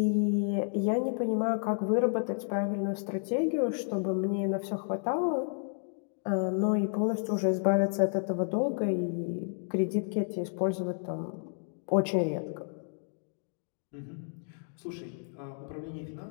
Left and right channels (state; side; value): silent; right; digital silence